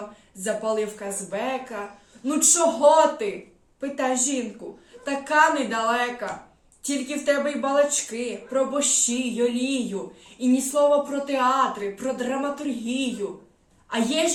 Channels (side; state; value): both; identical; correlation 1.00